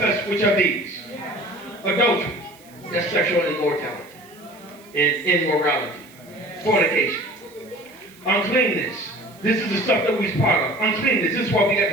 which are these. Adultery, that's sexual immortality, and immorality, fornication, uncleanness. This is the stuff that we're part of. Uncleanness, this is what we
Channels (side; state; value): right; noise; hiss, 25 dB below the sound